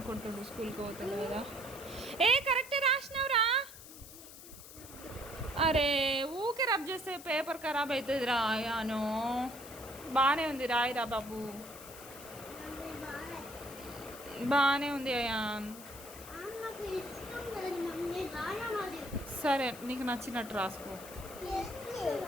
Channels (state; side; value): noise; left; hiss, 15 dB below the sound